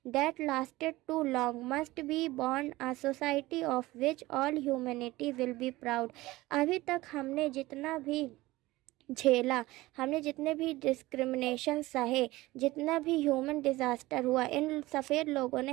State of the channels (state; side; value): quieter; left; 18.9 dB